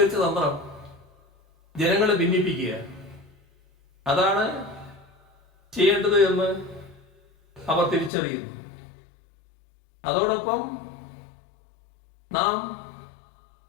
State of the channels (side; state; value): right; drops out; at 8.1 s